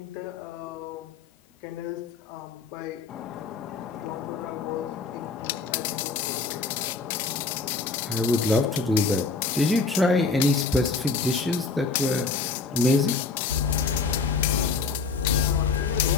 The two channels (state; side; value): quieter; right; 4.4 dB